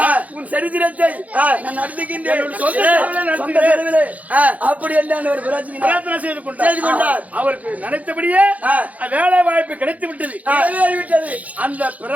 உன் சரித்திரத்தை நான் நடத்துகின்றேன். அப்படி என்ன ஒரு பிரார்த்தனை செய்து கொண்டார். அவருக்கு நினைத்தபடியே வேலை வாய்ப்பு கிடைத்து விட்டது. அந்த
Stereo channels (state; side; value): late; left; 0.072 ms